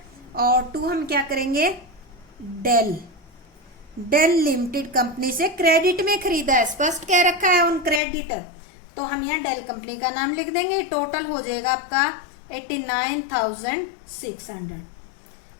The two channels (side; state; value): right; drops out; at 8.0 s